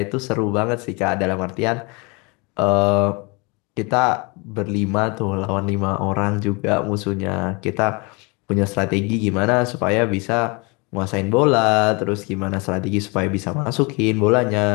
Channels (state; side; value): quieter; right; 29.1 dB